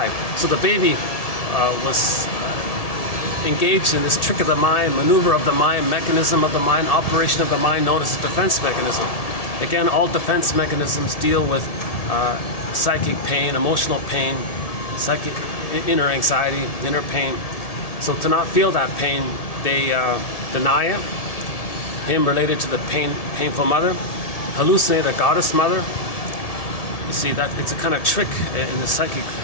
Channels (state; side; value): late; right; 1.7 ms